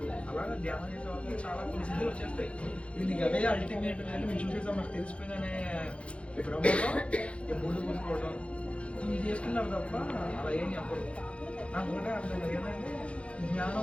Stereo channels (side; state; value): right; late; 0.061 ms